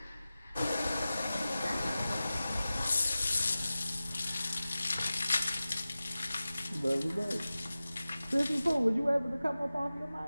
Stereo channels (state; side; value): inverted; both; correlation -0.96